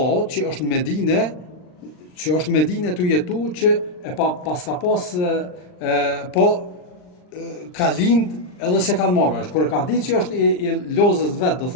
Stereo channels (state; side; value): late; right; 39 ms